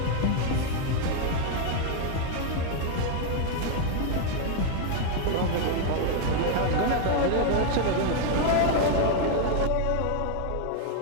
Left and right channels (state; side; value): different; both; correlation 0.00